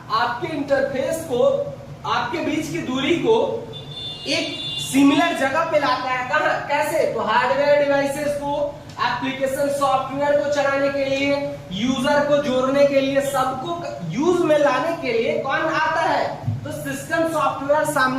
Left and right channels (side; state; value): both; identical; correlation 1.00